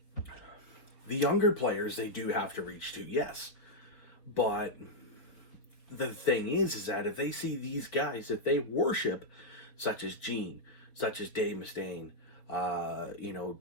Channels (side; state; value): right; late; 4.2 ms